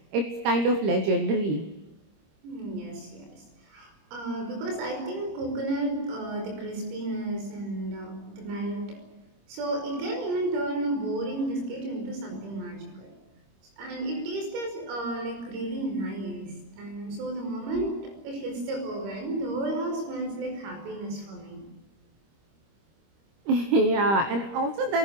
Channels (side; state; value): left; late; 25 ms